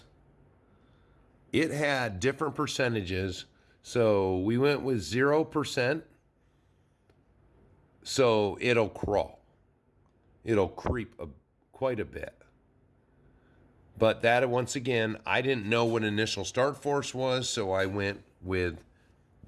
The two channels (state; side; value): identical; both; correlation 1.00